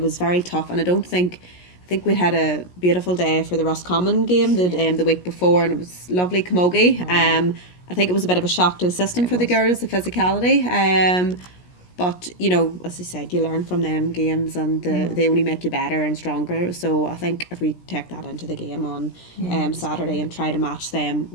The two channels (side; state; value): right; late; 17 ms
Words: was very tough. And I think we'd had a beautiful day for the Roscommon game the week before, and it was lovely camogie. I think it was a bit of a shock to the system for the girls, the physicality. But, you know, as I said, you learn from them games, and they only make you better and stronger. So I think if we take that into the game on Saturday and try to match them